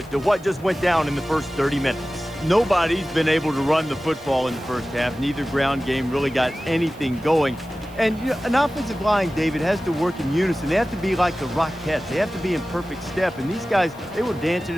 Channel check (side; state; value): right; noise; hiss, 26 dB below the sound